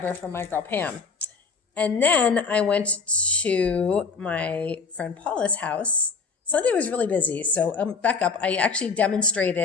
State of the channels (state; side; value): quieter; right; 5.1 dB